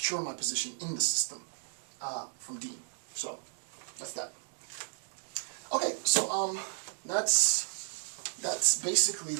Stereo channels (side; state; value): left; silent; digital silence